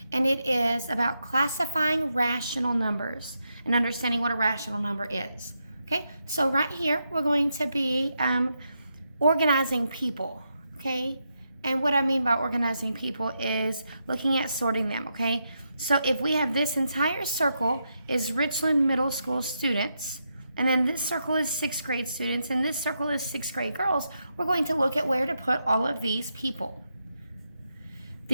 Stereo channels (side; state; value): both; inverted; correlation -0.84